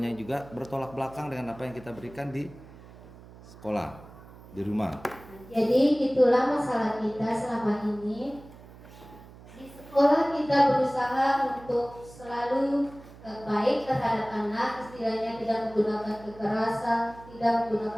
juga bertolak belakang dengan apa yang kita berikan di sekolah, di rumah. Jadi itulah masalah kita selama ini. Di sekolah kita berusaha untuk selalu baik terhadap anak, istilahnya tidak menggunakan kekerasan, tidak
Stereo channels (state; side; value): noise; right; hum, 19 dB below the sound